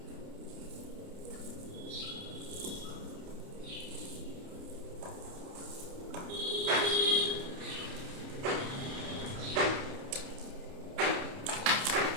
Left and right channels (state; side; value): late; left; 29 ms